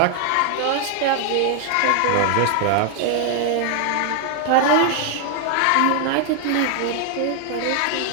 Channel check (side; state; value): both; different; correlation 0.00